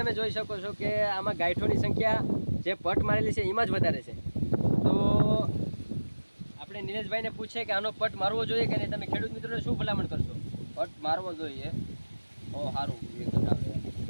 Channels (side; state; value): both; inverted; correlation -1.00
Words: જોઈ શકો છો કે આમાં ગાંઠોની સંખ્યા જે પટ મારેલી છે એમાં જ વધારે છે. તો આપણે નિલેશભાઈને પૂછીએ કે આનો પટ મારવો જોઈએ કે નહીં. તમે ખેડૂત મિત્રોને શું ભલામણ કરશો? પટ મારવો જોઈએ, બહુ સારું રિઝલ્ટ આવે.